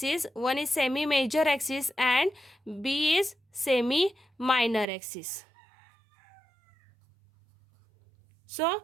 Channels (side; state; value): left; drops out; at 4.9 s